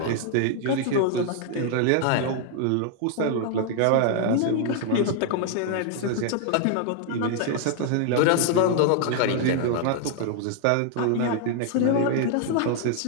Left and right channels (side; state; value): both; different; correlation 0.00